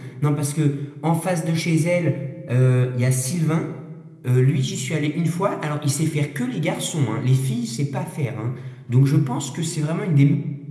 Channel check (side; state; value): both; identical; correlation 1.00